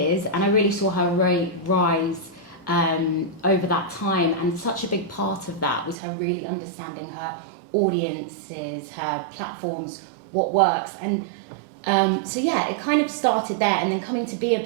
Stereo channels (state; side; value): drops out; left; at 6.0 s